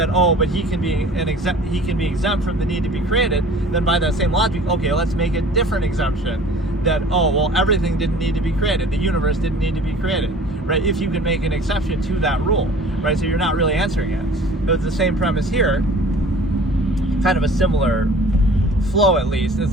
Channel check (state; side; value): normal; both; correlation 0.47